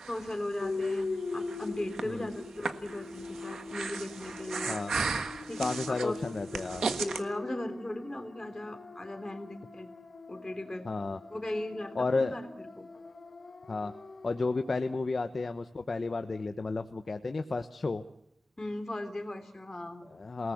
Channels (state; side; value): normal; both; correlation 0.93